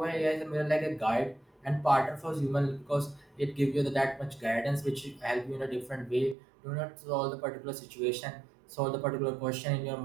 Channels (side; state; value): left; drops out; at 6.4 s